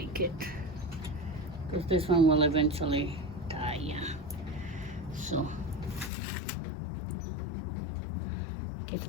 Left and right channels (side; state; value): right; drops out; at 6.1 s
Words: it because this one will eventually die, yeah. So it gets